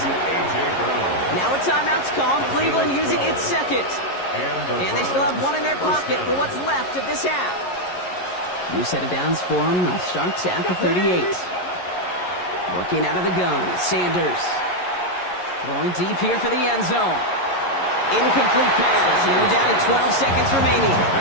Now a timeout's called, Cleveland using its 2nd. And they still have 1 in their pocket for what's left of this half. New set of downs for them. They'll start at the 38. Working out of the gun, Sanders. Going deep here for the end zone. Incomplete pass, and we're down to 12 seconds remaining.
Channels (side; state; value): right; late; 11 ms